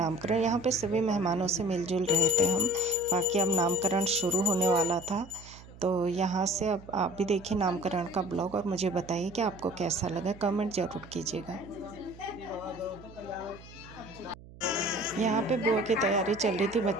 यहाँ पे सभी मेहमानों से मिलजुल रहे थे हम। बाकी अब नामकरण शुरू होने वाला था, तो यहाँ से अब आप भी देखिए नामकरण का ब्लॉग और मुझे बताइए कि आपको कैसा लगा, कमेंट ज़रूर कीजिएगा। यहाँ पे बुआ की तैयारी चल रही थी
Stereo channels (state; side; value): noise; right; hum, 19 dB below the sound